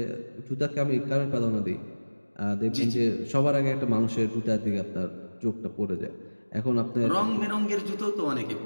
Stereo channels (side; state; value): both; inverted; correlation -1.00